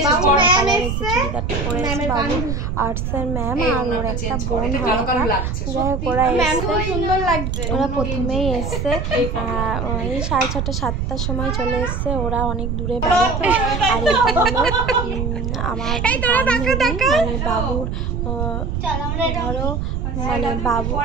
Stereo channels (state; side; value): noise; right; rumble, 2 dB below the sound